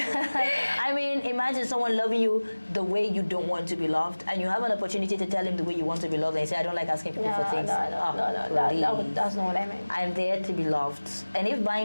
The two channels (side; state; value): both; inverted; correlation -1.00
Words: I mean, imagine someone loving you the way you don't want to be loved, and you have an opportunity to tell him the way you want to be loved, and you say, I don't like asking people for things. No, that's not what I meant. I'm there to be loved. And if